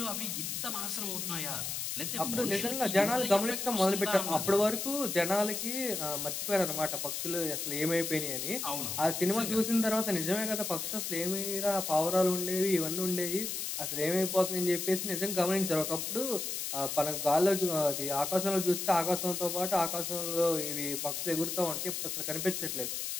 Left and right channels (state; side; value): noise; left; hiss, 3 dB below the sound